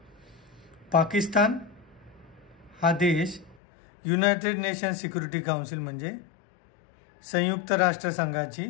पाकिस्तान हा देश युनायटेड नेशन सिक्युरिटी काउन्सिल म्हणजे संयुक्त राष्ट्रसंघाची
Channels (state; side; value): drops out; right; at 3.6 s